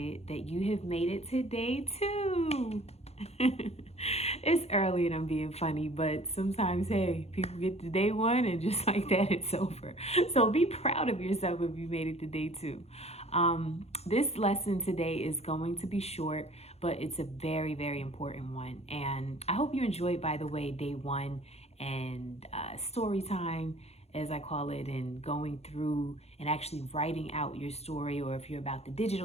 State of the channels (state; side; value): late; right; 0.30 ms